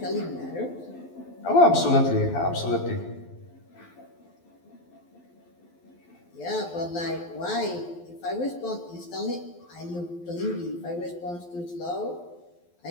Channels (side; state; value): right; late; 12 ms